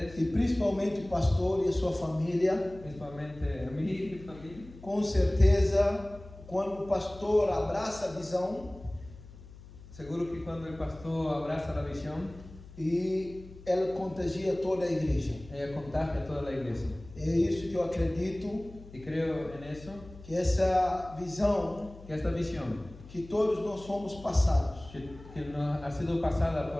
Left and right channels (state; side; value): noise; left; hum, 18 dB below the sound